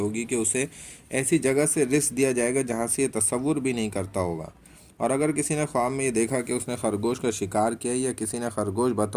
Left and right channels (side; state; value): both; identical; correlation 1.00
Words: کہ اسے ایسی جگہ سے رزق دیا جائے گا جہاں سے یہ تصور بھی نہیں کرتا ہوگا۔ اور اگر کسی نے خواب میں یہ دیکھا کہ اس نے خرگوش کا شکار کیا یا کسی نے خرگوش